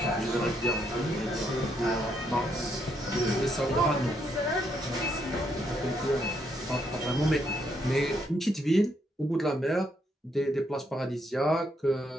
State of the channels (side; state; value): both; normal; correlation 0.75